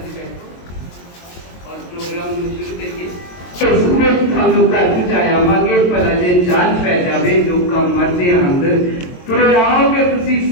से बैठो और प्रोग्राम में शुरू करिए। सूरज थानू घर पहुंचाया आवांगे, भला जे जान पै जावे लोकां मरदे अंदर तुरे आओगे तुसी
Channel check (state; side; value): late; right; 22 ms